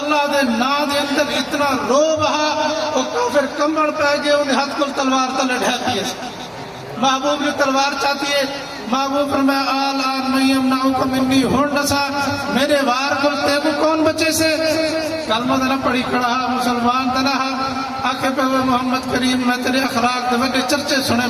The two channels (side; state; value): both; identical; correlation 1.00